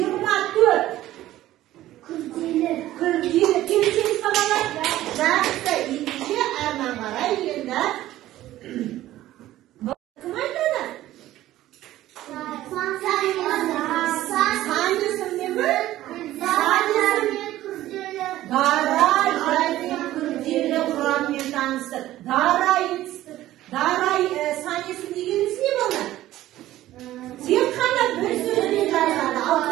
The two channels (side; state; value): left; quieter; 14.6 dB